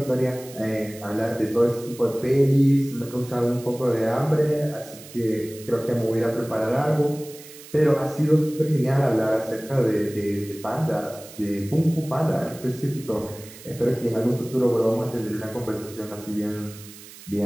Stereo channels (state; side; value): noise; right; hiss, 18 dB below the sound